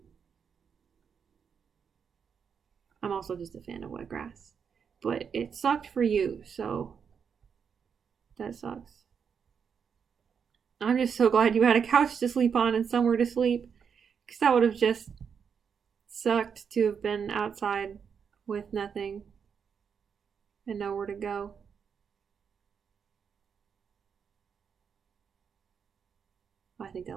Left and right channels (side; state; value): left; quieter; 6.8 dB